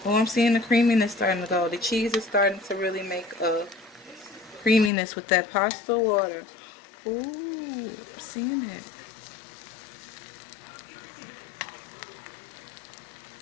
Oh, I'm seeing the creaminess starting to go. The cheese is starting to really make a creaminess with that pasta water. Ooh, I'm seeing it.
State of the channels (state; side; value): drops out; right; at 4.9 s